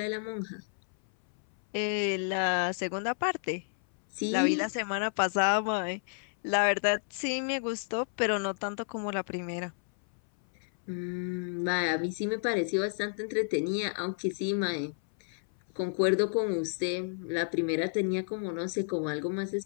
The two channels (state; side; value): silent; right; 57 dB below the other